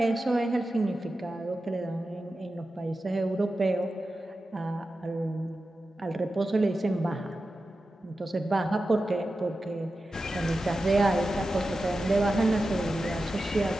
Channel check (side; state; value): both; normal; correlation 0.92